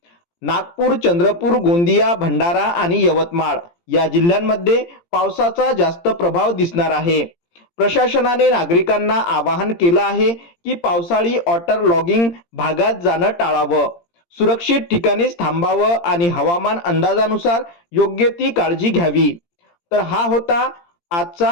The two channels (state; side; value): late; right; 17 ms